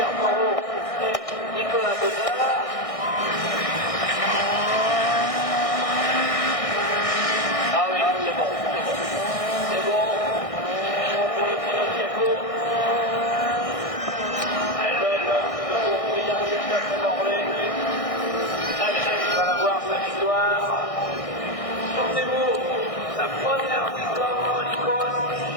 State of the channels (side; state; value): right; late; 1.6 ms